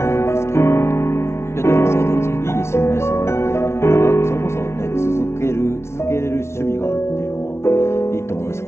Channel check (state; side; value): late; right; 0.13 ms